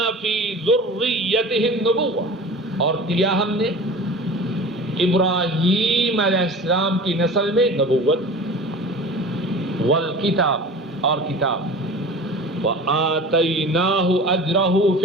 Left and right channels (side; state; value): both; normal; correlation 0.38